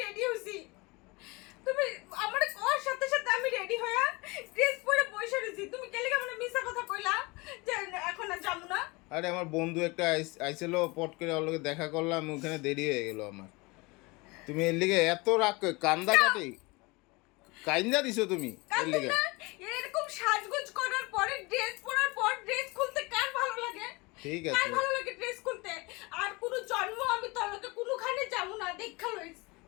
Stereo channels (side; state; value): right; quieter; 25.2 dB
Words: রেডি হইছি, তুমি আমারে কর সাথে সাথে আমি রেডি হইয়া ড্রেস পরে বসে রইছি। তুমি কেলে আমারে মিথ্যা কথা কইলা যে এখন আর যামু না? আরে আমার বন্ধু একটা আইছিল, পট করে ওর লগে দেখা করলাম, ওখানে দেরি হয়ে গেল আমার। তুমি এর লিগে এত রাগ কান্দা কাটি কাইন্দা দিছো তুমি এর লিগে? না, এরকম সাজগোজ করার পরে ড্রেস পরার পর ড্রেস খুলতে কার ভালো লাগে? ঠিক কার আছে ভালো লাগে ড্রেস খুলতে? আর কোনো জন্ম আমি তোর লগে কোনোখানে যাবো না, দেখা লইস।